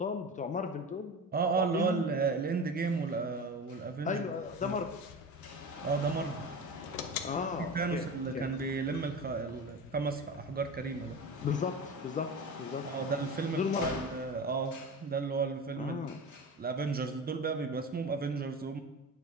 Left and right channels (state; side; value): normal; both; correlation 0.29